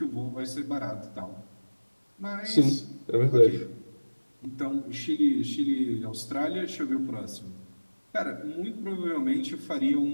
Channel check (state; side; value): inverted; both; correlation -1.00